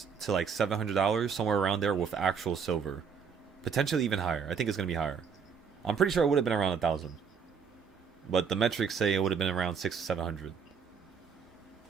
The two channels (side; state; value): left; quieter; 6.5 dB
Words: to like $700, somewhere around there with actual silver. Potentially even higher. I think it's going to be higher. I'm pretty sure it would have been around 1,000. But the metrics say it would have been around 600 to 700.